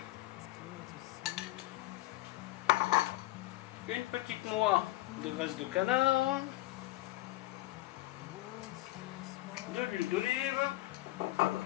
une petite noix de graisse de canard, de l'huile d'olive.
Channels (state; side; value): quieter; right; 18.1 dB